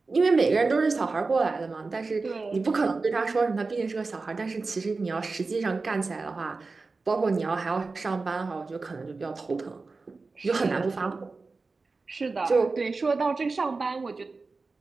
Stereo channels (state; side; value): quieter; left; 3.9 dB